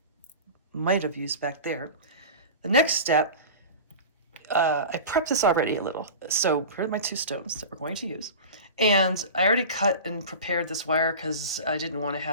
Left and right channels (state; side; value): inverted; both; correlation -0.33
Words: Might have used back there. The next step, I prepped this already a little. So here are my two stones that we're going to use. And I already cut and prepared this wire because I didn't want to